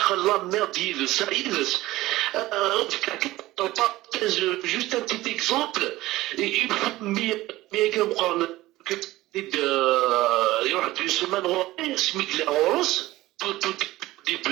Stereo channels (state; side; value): quieter; left; 17.4 dB